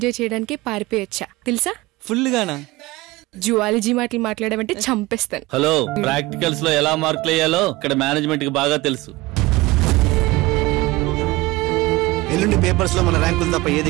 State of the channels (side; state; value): left; quieter; 20.5 dB